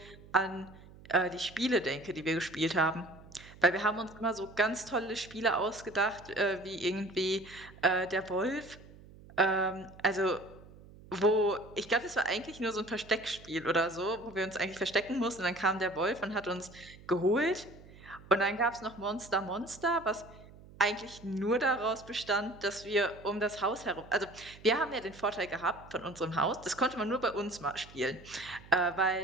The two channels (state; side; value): noise; right; hum, 20 dB below the sound